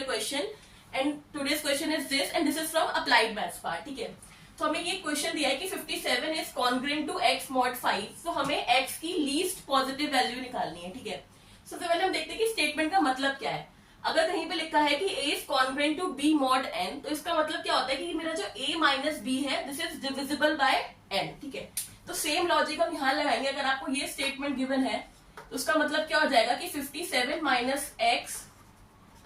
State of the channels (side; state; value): both; identical; correlation 1.00